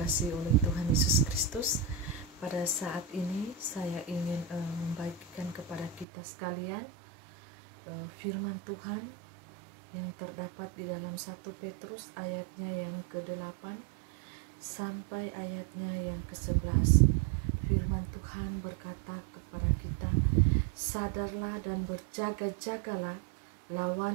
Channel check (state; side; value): drops out; left; at 6.1 s